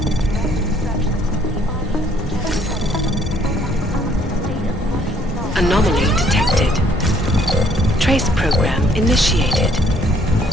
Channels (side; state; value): both; normal; correlation 0.64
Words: Anomaly detected. Trace program initiated.